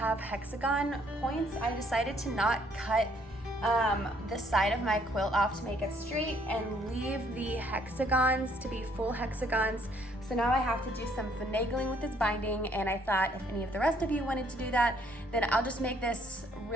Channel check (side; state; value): both; normal; correlation 0.65